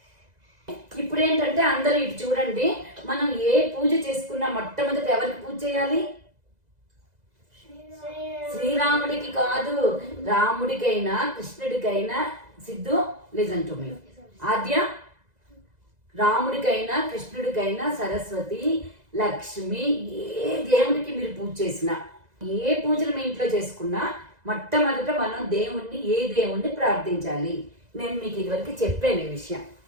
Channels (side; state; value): left; late; 2.0 ms